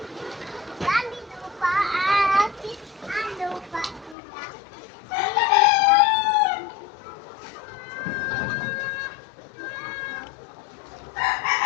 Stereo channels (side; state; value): right; drops out; at 4.2 s